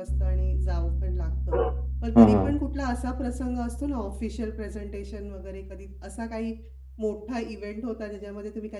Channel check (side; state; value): both; identical; correlation 1.00